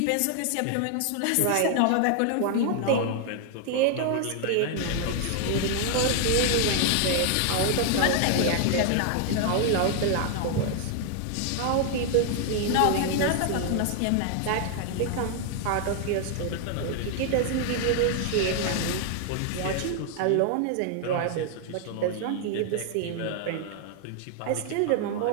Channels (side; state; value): both; different; correlation 0.00